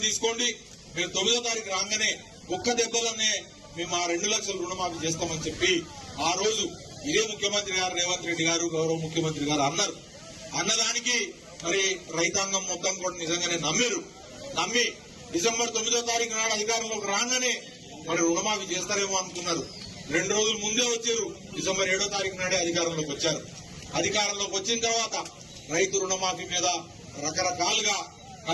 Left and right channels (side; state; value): both; identical; correlation 1.00